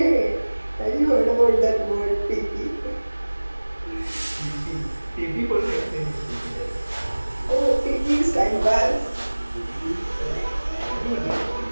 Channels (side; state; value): both; inverted; correlation -1.00